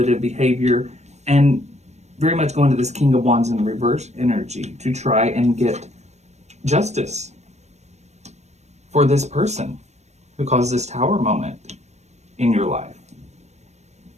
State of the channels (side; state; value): left; late; 0.33 ms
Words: behavior and very much go into this King of Wands in reverse energy to try and get justice for this person who caused this Tower moment in your life.